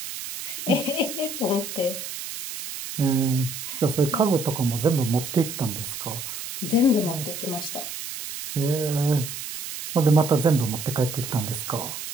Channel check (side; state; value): right; noise; hiss, 8 dB below the sound